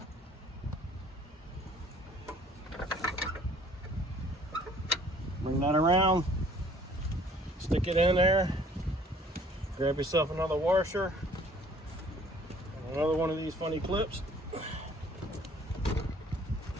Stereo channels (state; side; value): normal; both; correlation 0.55